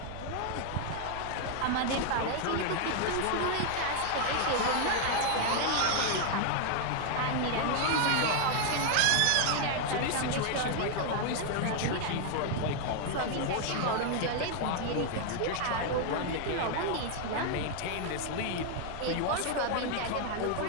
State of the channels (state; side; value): different; both; correlation 0.00